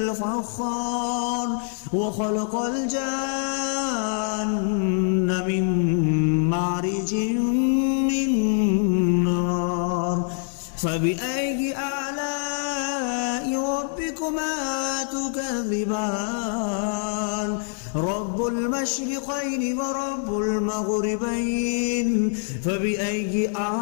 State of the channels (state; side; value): silent; right; 60 dB below the other